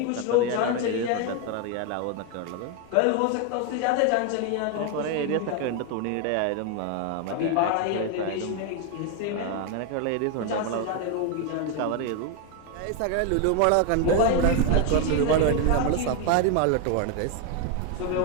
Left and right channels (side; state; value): both; different; correlation 0.01